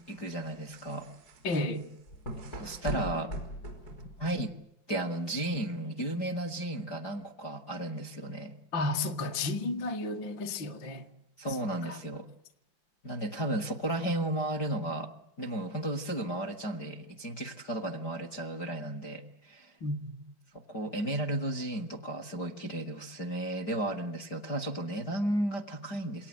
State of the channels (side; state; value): right; late; 5.0 ms